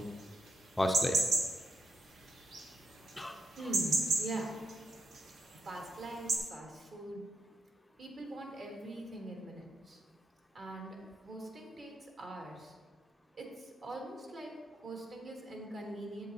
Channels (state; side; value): normal; both; correlation 0.81